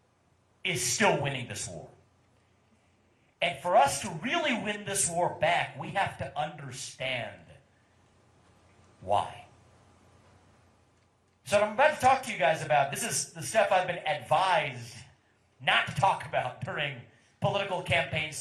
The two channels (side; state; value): both; identical; correlation 1.00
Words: is still winning this war. And for us to really win this war back, we have to understand why. So what I'm about to talk to you guys about, this is the stuff I've been advised not to talk about during political campaign